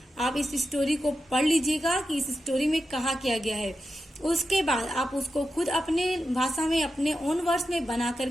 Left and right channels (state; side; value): normal; both; correlation 0.90